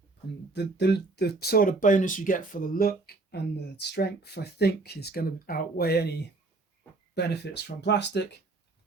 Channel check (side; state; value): left; quieter; 3.4 dB